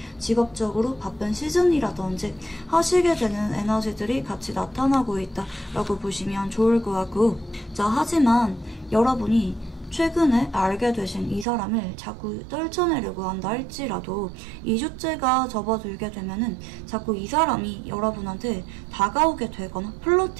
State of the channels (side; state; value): left; drops out; at 11.5 s